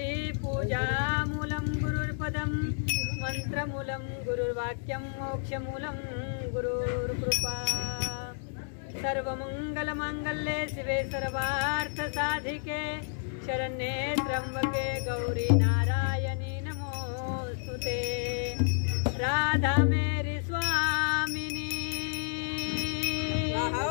पूजामूलं गुरुर्पदं मंत्रमूलं गुरुर्वाक्यं मोक्षमूलं गुरुर्कृपा सर्वमंगलमांगल्ये शिवे सर्वार्थसाधिके शरण्ये त्र्यंबके गौरी नारायणी नमोस्तुते राधा मेरी स्वामिनी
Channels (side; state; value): right; silent; digital silence